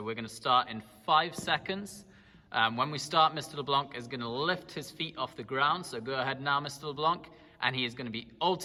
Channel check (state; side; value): identical; both; correlation 1.00